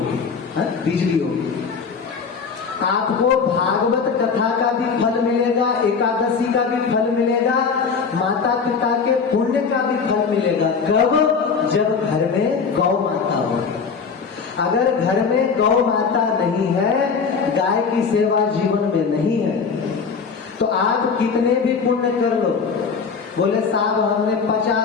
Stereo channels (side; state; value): right; quieter; 5.6 dB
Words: बिजली होगी। आपको भागवत कथा का भी फल मिलेगा, एकादशी का भी फल मिलेगा, माता पिता के पुण्य का भी फल मिलेगा। कब? जब घर में गौ माता होगी। अगर घर में गौ माता नहीं है, गाय की सेवा जीवन में नहीं है, तो आप कितने भी पुण्य कर लो। बोले साहब हमने